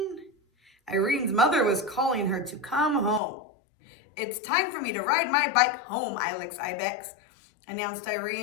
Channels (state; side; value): drops out; right; at 3.2 s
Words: Irene's mother was calling her to come home. It's time for me to ride my bike home, Ilex Ibex, announced